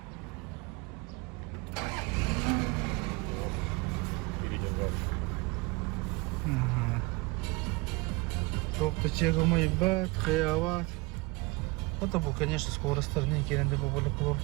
Ага. Тоқты чегімі бәт, хаяват. Это был, конечно, скоростар, не кенде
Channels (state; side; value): quieter; left; 25.0 dB